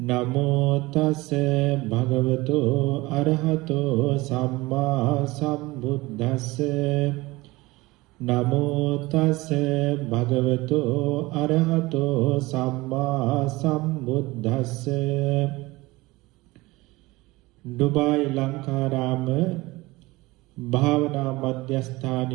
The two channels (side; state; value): left; quieter; 21.1 dB